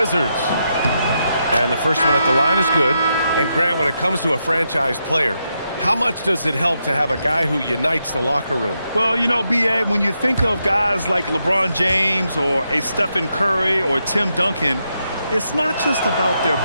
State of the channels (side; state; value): both; inverted; correlation -0.83